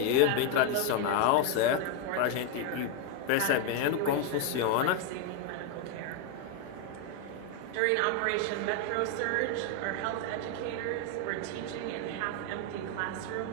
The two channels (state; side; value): different; both; correlation 0.01